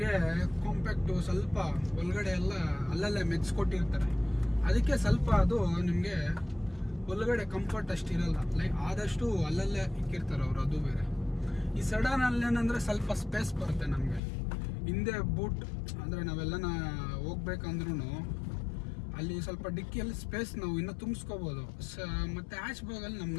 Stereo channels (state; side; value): drops out; right; at 14.2 s